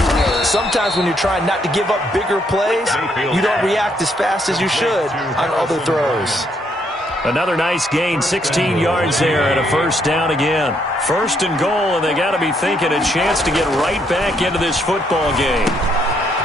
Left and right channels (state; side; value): normal; both; correlation 0.73